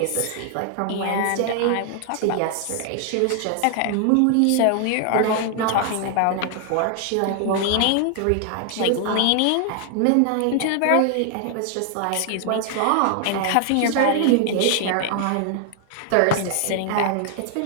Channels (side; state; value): both; different; correlation 0.00